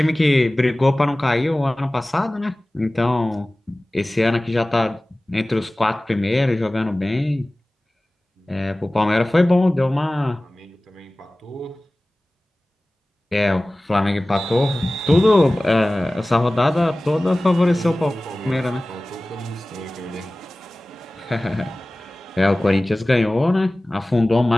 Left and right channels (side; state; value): both; normal; correlation 0.98